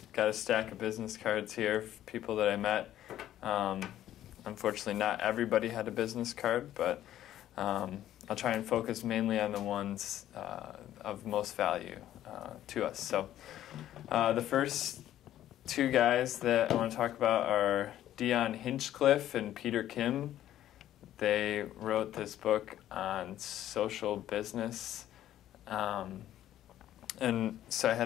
got a stack of business cards here for people that I met. Unfortunately, not everybody had a business card, but I'll try and focus mainly on the ones of most value to us. So the first two guys that I want to talk about are Dion Hinchcliffe and Peter Kim. They wrote this book on social business. And so I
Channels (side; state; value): right; quieter; 12.4 dB